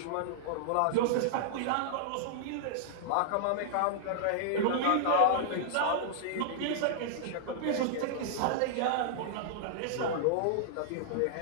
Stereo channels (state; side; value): different; both; correlation -0.01